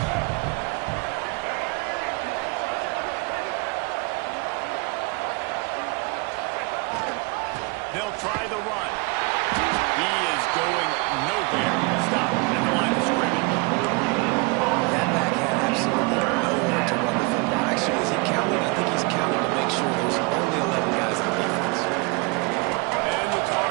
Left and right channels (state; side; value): quieter; left; 28.6 dB